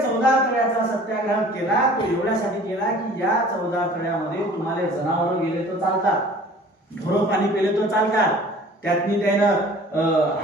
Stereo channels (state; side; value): normal; both; correlation 0.48